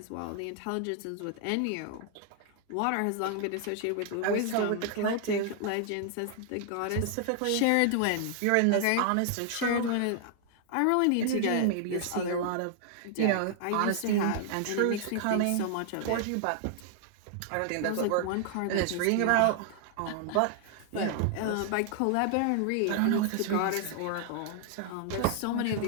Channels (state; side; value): different; both; correlation 0.00